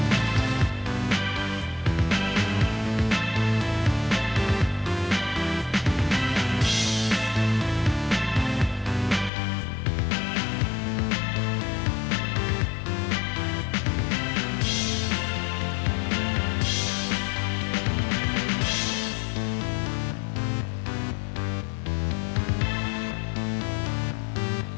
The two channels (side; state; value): right; drops out; at 9.3 s